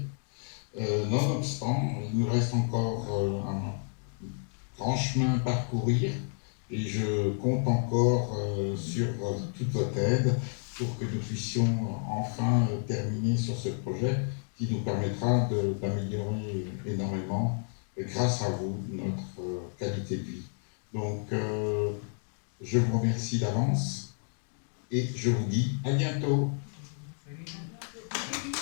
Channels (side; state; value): right; silent; 57 dB below the other